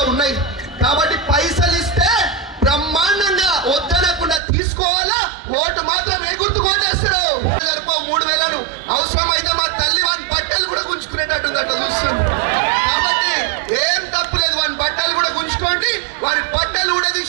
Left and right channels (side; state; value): left; drops out; at 4.4 s